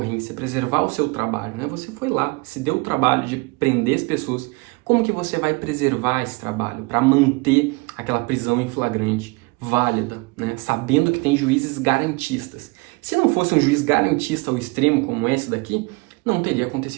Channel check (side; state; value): left; quieter; 26.9 dB